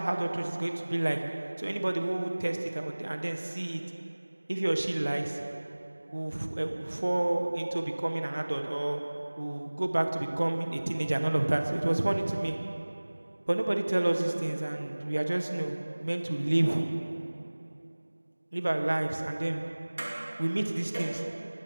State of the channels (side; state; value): both; inverted; correlation -1.00